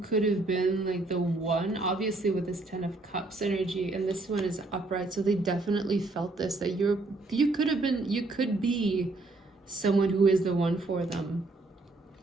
could have been like the one, obviously with this Ten of Cups energy, and this one is upright, so they definitely felt this, that you could be someone who is the one for them.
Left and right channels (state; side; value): quieter; left; 3.1 dB